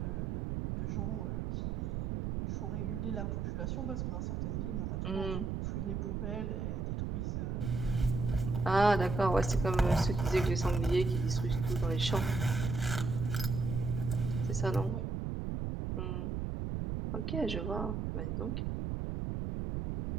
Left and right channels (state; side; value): noise; right; rumble, 2 dB below the sound